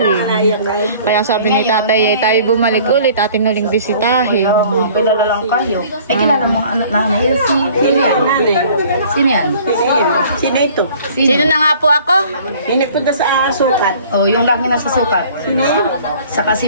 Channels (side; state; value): both; inverted; correlation -0.52